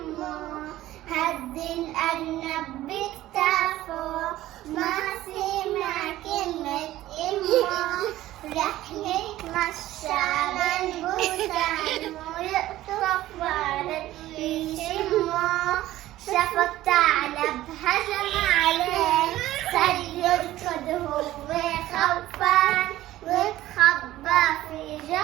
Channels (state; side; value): quieter; left; 15.1 dB